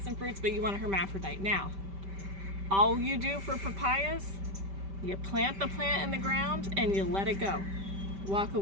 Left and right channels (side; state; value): left; late; 5.1 ms